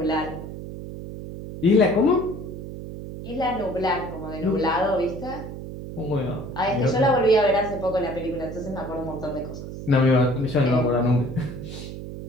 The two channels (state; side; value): noise; right; hum, 10 dB below the sound